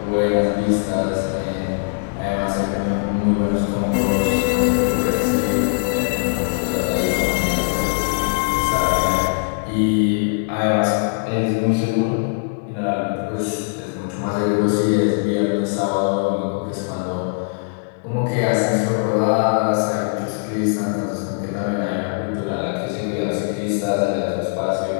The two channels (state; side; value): silent; right; digital silence